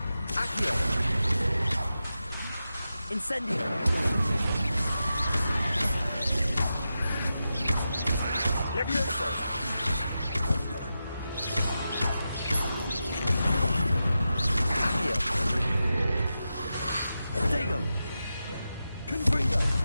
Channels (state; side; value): inverted; both; correlation -0.90